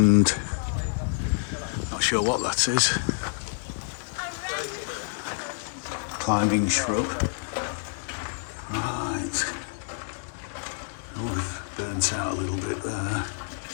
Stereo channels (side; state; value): right; silent; digital silence